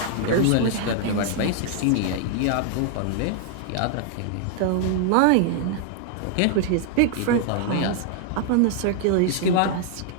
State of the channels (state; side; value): different; both; correlation -0.01